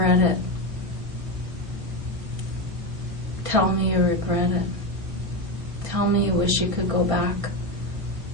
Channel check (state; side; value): late; left; 1.5 ms